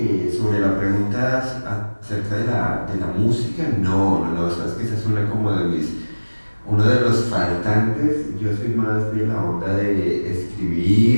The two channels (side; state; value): both; inverted; correlation -1.00